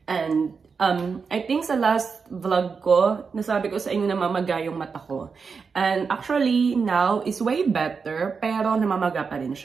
And I think sa last vlog ko, nasabi ko sa inyo na mamaga yung mata ko. And actually, now is way better, pero namamaga pa rin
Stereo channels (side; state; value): left; quieter; 5.4 dB